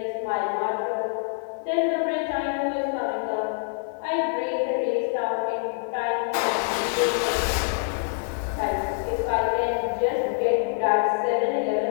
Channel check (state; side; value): silent; right; digital silence